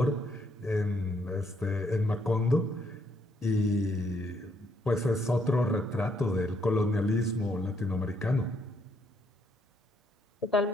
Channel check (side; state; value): both; normal; correlation 0.72